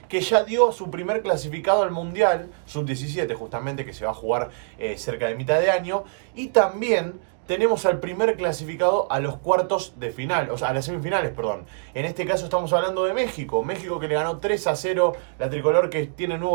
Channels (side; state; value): left; silent; digital silence